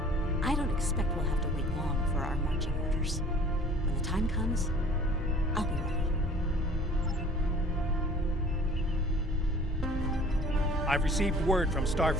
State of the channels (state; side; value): normal; both; correlation 0.49